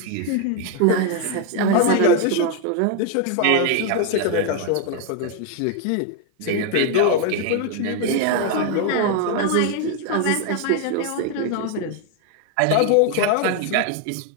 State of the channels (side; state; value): both; different; correlation 0.01